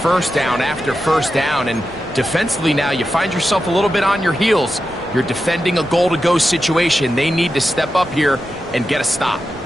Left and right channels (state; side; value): noise; right; rumble, 20 dB below the sound